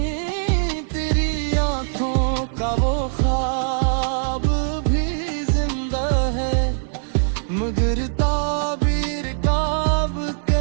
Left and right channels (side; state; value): left; silent; 65 dB below the other